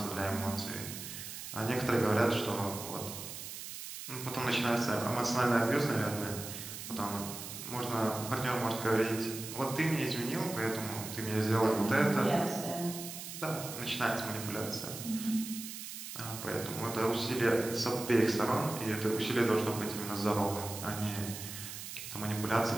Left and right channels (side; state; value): right; noise; hiss, 9 dB below the sound